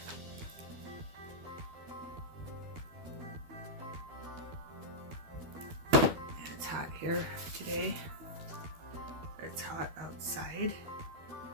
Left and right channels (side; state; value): left; late; 12 ms